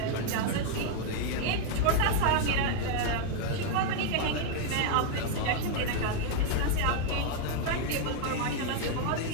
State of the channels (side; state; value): both; different; correlation 0.00